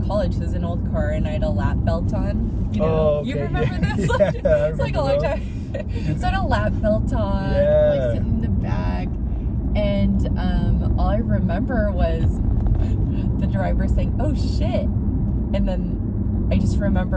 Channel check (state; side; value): identical; both; correlation 1.00